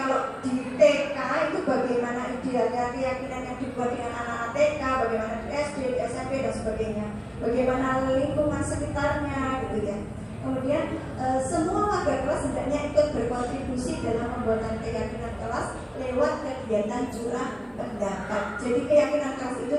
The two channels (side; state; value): both; identical; correlation 1.00